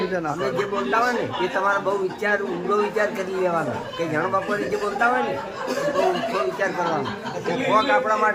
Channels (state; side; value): identical; both; correlation 1.00